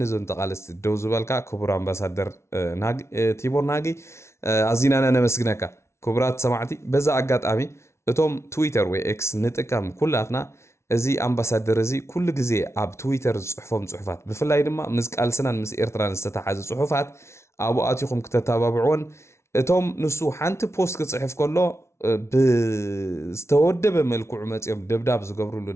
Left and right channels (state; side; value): late; right; 0.13 ms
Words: ዞን ተቃለስቲ ደው ዝበልካ ክቡር ኣምባሳደር ቲቦር ናጊ ኣዚናና ነመስግነካ ክቡራት ሰማዕቲ በዛ ኣጋጣሚ እቶም ትዊተር ወይ ኤክስ ንጥቀም ኩላትና እዚ ኣምባሳደር እዚ ኩሉ ግዜ ኣብ ትዊተር ዝጽሕፎም ጽሑፋት ብፍላይ ድማ ምስ ቃልስናን ምስ ኤርትራን ዝተተሓዘ ጽሑፋት ኣብኡ ኣትኹም ክተተባብዑን እቶም ንሱ ሓንቲ ፖስት ክጽሕፍ ከሎ ብዝተወደበ መልክዑ መጽኦም ደብዳብ ዝገብሩሉ